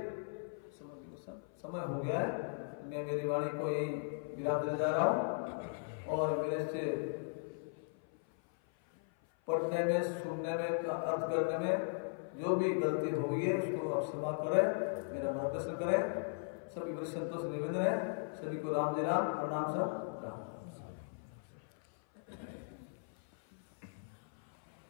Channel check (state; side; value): silent; right; 53 dB below the other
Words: समय हो गया है, मैं मेरी वाणी को यही विराम देने जा रहा हूँ। और मेरे से पढ़ने में, सुनने में, अर्थ करने में जो भी गलती हो गई है उसको आप क्षमा करें, मेरा मार्गदर्शन करें। सभी बड़े संतों से निवेदन है, सभी को राम जय राम, प्रणाम सब राम।